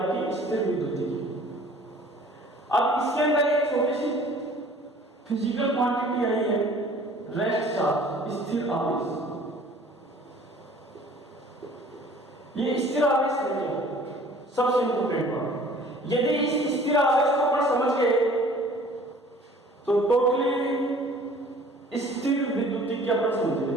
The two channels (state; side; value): normal; both; correlation 0.51